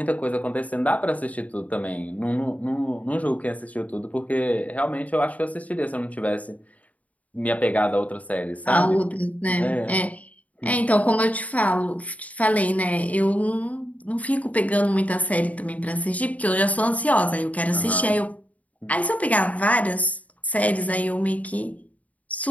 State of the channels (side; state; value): right; late; 0.071 ms